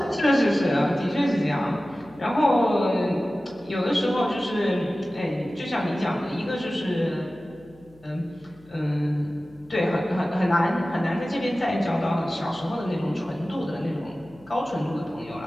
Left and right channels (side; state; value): left; noise; hum, 27 dB below the sound